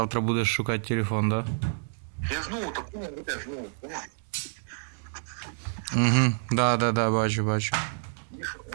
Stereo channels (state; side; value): silent; left; digital silence